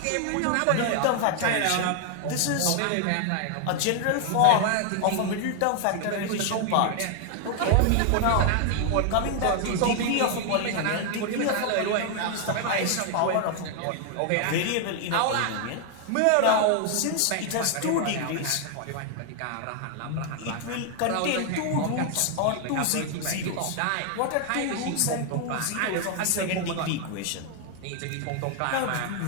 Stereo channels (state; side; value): different; both; correlation 0.00